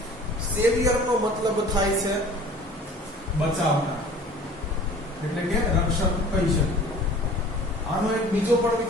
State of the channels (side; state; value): both; normal; correlation 0.46